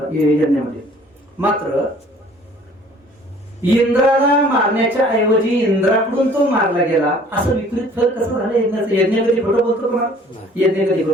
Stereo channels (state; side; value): normal; both; correlation 0.53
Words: यज्ञामध्ये. मात्र इंद्राला मारण्याच्या ऐवजी इंद्राकडून तो मारला गेला, असं विपरीत फल कसं झालं यज्ञाचं. यज्ञ कधी खोटं बोलतो का? यज्ञ कधी